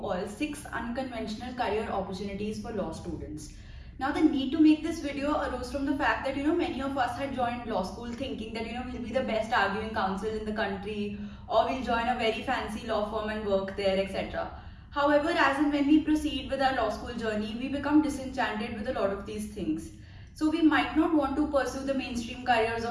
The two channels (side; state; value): both; identical; correlation 1.00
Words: 6 unconventional career opportunities for law students. Now the need to make this video arose from the fact that many of us had joined law school thinking that we'll be the best arguing counsel in the country, or we'll join a very fancy law firm and work there, etc. However, as and when we proceed with our law school journey, we become disenchanted with a lot of these things. So we might not want to pursue the mainstream careers